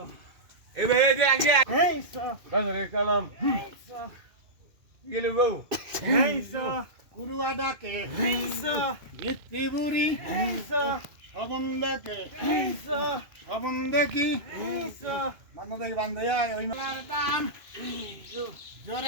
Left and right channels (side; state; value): left; late; 2.5 ms